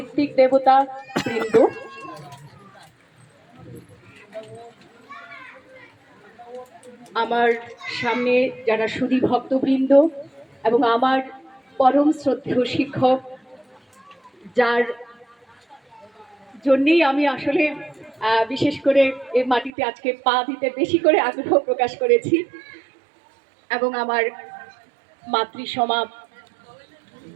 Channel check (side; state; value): left; drops out; at 19.7 s